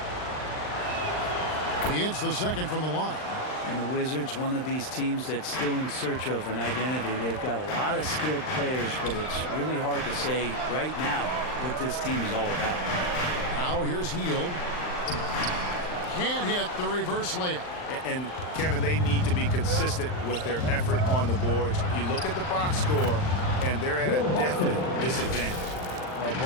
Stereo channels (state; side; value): late; right; 39 ms